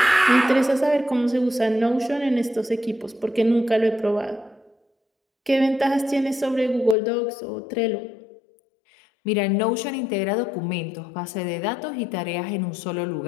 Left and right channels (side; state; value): right; drops out; at 7.0 s